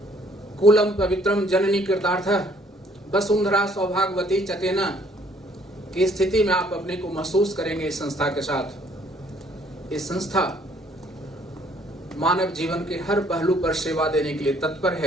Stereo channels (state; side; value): normal; both; correlation 0.62